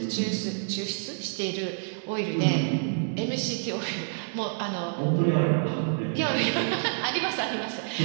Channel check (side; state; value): left; silent; digital silence